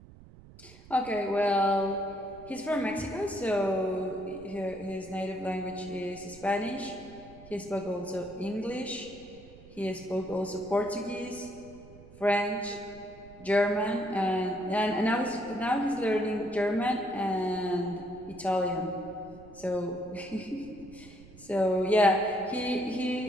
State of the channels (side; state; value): right; noise; rumble, 20 dB below the sound